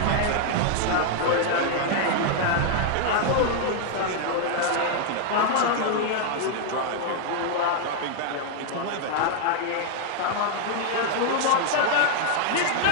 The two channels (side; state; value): both; different; correlation 0.00